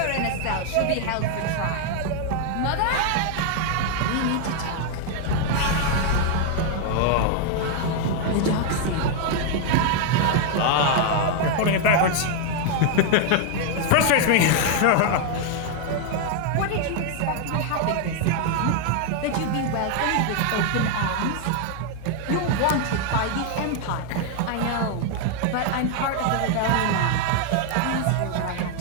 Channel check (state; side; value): different; both; correlation 0.00